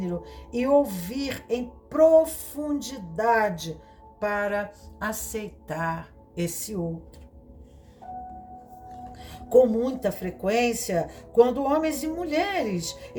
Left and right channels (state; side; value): identical; both; correlation 1.00